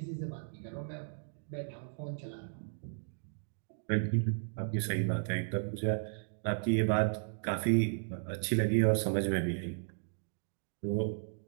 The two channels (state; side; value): silent; left; digital silence